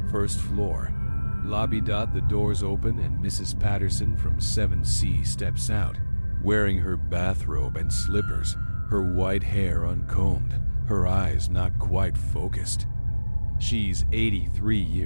1st floor. Lobby. The doors open and Mrs. Patterson from 7C steps out, wearing her bathrobe and slippers, her white hair uncombed, her eyes not quite focused. She's 83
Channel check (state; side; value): inverted; both; correlation -1.00